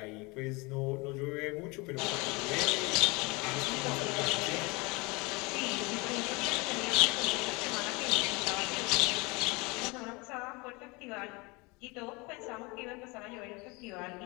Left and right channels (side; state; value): right; quieter; 26.5 dB